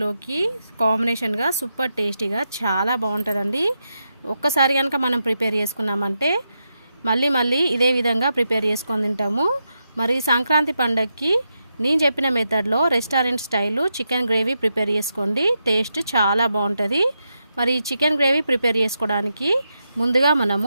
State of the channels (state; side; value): inverted; both; correlation -0.85